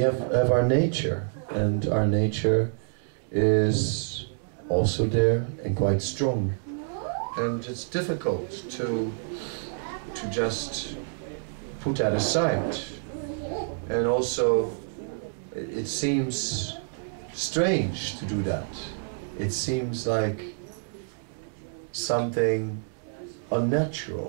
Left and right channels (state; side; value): silent; left; digital silence